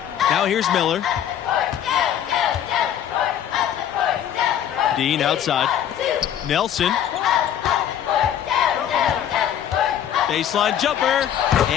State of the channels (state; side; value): quieter; right; 10.0 dB